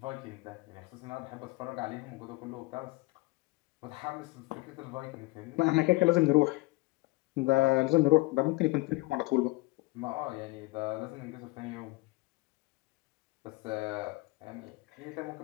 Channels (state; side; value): quieter; right; 22.7 dB